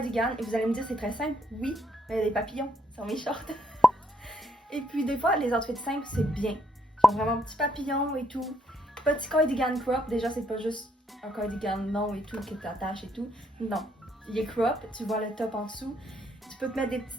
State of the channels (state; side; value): normal; both; correlation 0.73